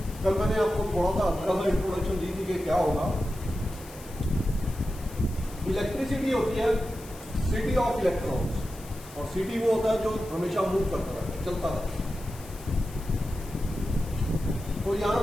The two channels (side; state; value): left; noise; hiss, 19 dB below the sound